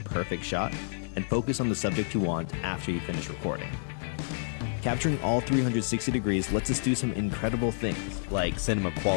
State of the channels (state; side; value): silent; right; 58 dB below the other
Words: perfect shot and focus on the subject you want after you finish recording. Capturing all 360 degrees lets us do some incredible things, like cinema